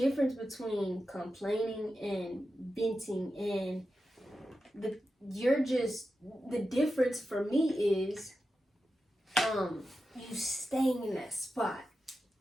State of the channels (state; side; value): normal; both; correlation 0.91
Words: between complaining and venting, and the difference for me is, you staying in that spot.